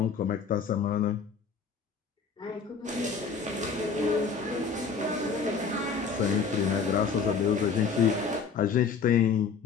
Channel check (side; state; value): right; quieter; 5.6 dB